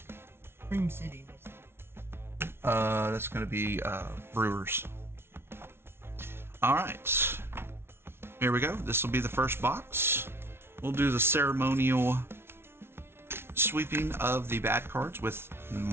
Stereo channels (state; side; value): late; left; 0.12 ms